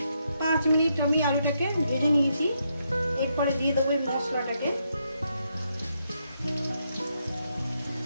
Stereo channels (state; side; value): inverted; both; correlation -0.79